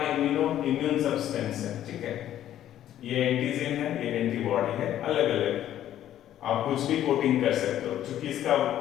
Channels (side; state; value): right; quieter; 11.8 dB